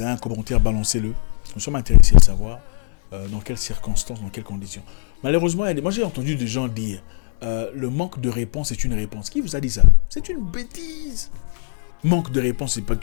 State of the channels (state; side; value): silent; right; 65 dB below the other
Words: un commentaire, balancez-le. Nous sommes intéressés à savoir dans quelles circonstances, dans quelles conditions. Malheureusement, moi j'ai entendu des gens dire le manque de réponse est une réponse. Qui vous a dit ça? C'est une bêtise. Manque de réponse, c'est pas